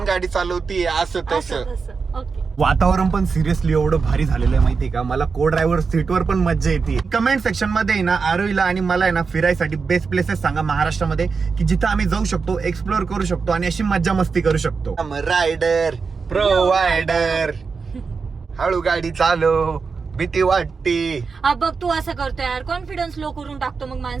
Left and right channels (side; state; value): left; quieter; 5.0 dB